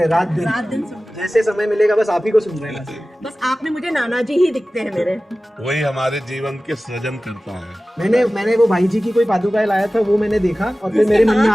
हैं, रात दिन। रात दिन सुन, जैसे समय मिलेगा बस आप ही को सुन रहे हैं। बस आप में मुझे नाना जी ही दिखते हैं मेरे। वही हमारे जीवन के सृजन करता है। मैंने वो भाई जी की कोई पादुका लाया था, वो मैंने देखा और फिर मेरे मन में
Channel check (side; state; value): both; normal; correlation 0.96